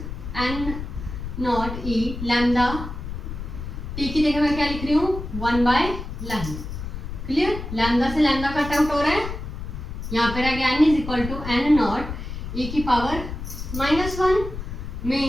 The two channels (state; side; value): noise; left; rumble, 7 dB below the sound